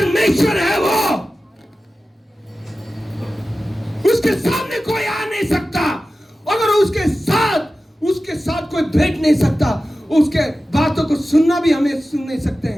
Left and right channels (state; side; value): normal; both; correlation 0.95